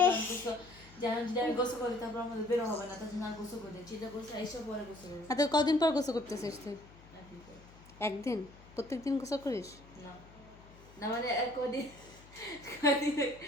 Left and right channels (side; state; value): left; noise; hum, 22 dB below the sound